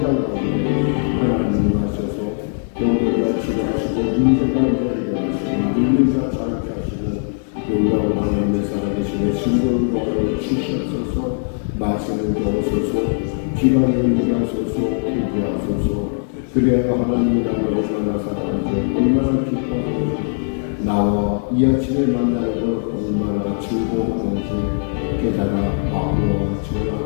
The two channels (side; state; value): right; silent; 66 dB below the other